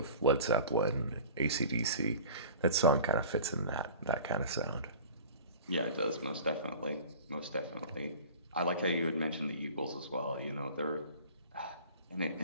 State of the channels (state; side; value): inverted; both; correlation -0.42